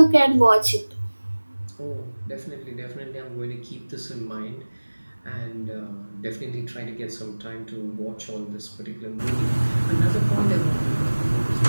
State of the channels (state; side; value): inverted; both; correlation -1.00